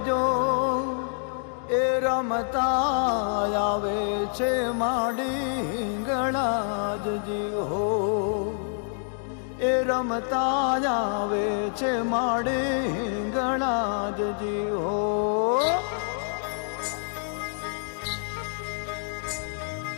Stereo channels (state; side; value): silent; right; digital silence